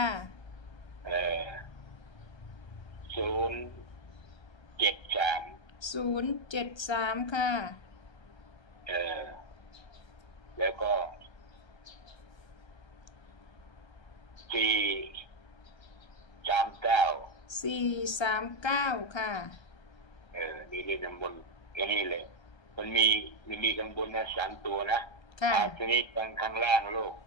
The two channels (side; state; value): right; late; 1.3 ms